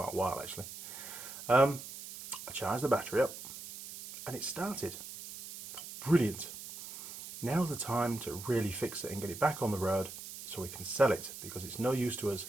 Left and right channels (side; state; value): right; noise; hiss, 11 dB below the sound